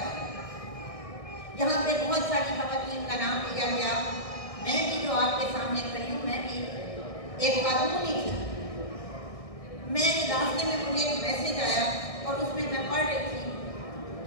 रहा है। यहाँ पे बहुत सारी खवातीन का नाम लिया गया। मैं भी जो आपके सामने खड़ी हूँ, मैं भी एक खातून ही थी। मैं रास्ते में मुझे एक मैसेज आया और उसमें मैं पढ़ रही थी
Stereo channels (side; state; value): right; late; 1.6 ms